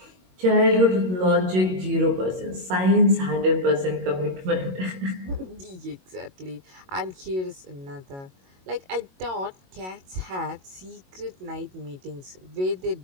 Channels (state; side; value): late; left; 22 ms